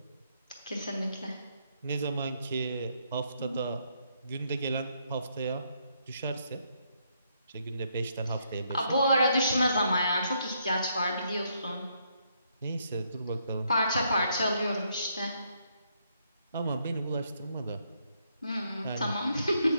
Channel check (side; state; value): both; inverted; correlation -0.74